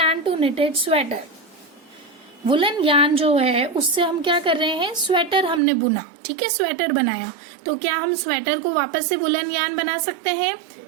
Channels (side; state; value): left; drops out; at 5.6 s